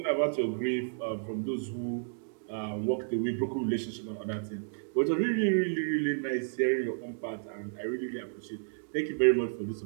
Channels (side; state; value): left; silent; digital silence